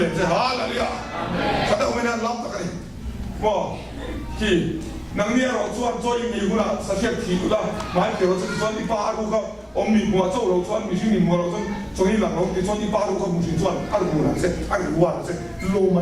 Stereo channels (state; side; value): identical; both; correlation 1.00